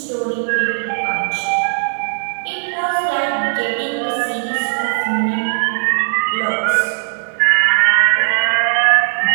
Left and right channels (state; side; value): silent; left; 64 dB below the other